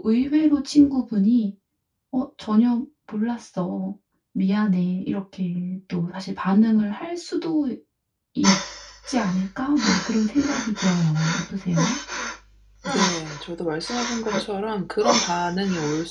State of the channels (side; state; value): both; identical; correlation 1.00